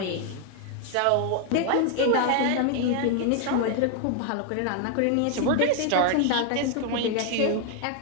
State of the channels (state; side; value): different; both; correlation 0.00